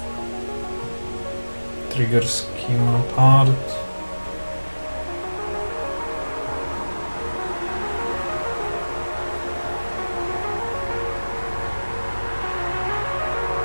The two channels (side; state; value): both; inverted; correlation -1.00